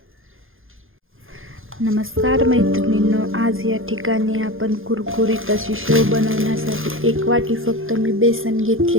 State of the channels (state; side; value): late; left; 0.59 ms